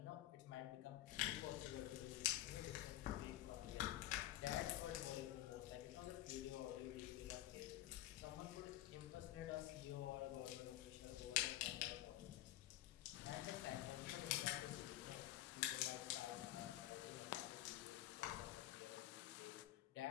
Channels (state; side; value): quieter; right; 14.3 dB